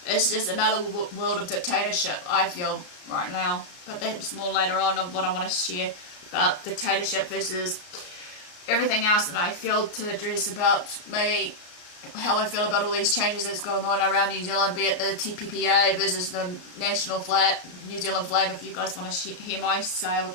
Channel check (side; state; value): right; late; 34 ms